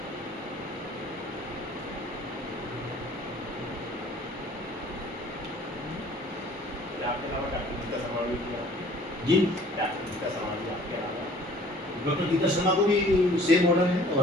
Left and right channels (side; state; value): both; normal; correlation 0.52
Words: जी डॉक्टर गीता शर्मा को भी सेम ऑर्डर है